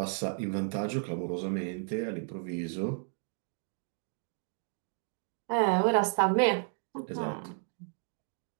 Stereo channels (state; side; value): silent; left; 56 dB below the other